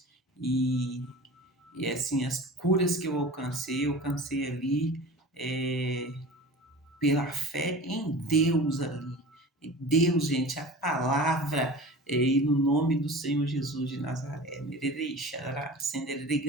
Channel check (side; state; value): both; normal; correlation 0.37